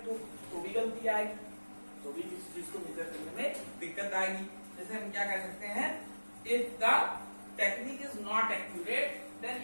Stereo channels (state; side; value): inverted; both; correlation -1.00